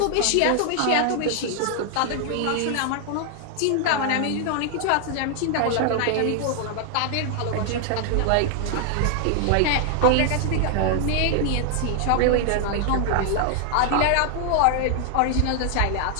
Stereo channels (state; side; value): different; both; correlation 0.00